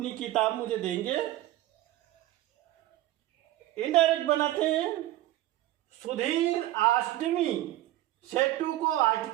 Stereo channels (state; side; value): quieter; left; 15.3 dB